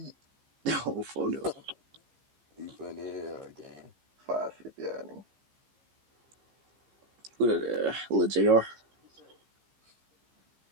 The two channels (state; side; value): late; left; 15 ms